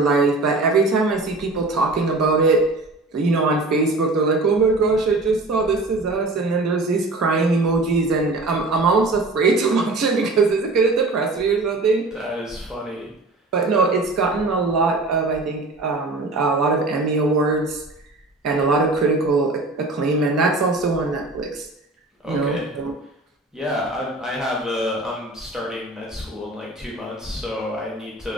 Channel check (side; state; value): left; quieter; 3.0 dB